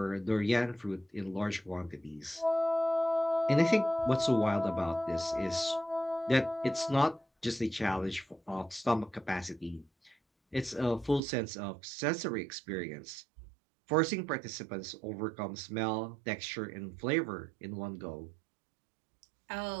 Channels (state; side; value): drops out; left; at 11.2 s